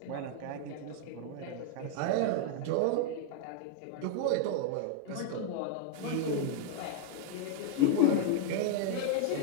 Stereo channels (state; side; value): different; both; correlation -0.01